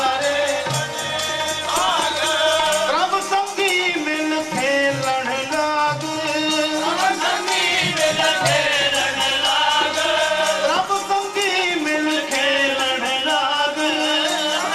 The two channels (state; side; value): identical; both; correlation 1.00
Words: प्रभ संगी मिल खेलन लाग प्रभ संगी मिल खेलन लाग